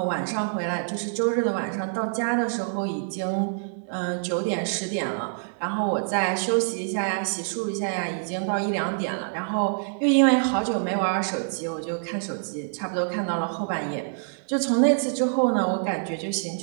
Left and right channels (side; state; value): left; silent; 61 dB below the other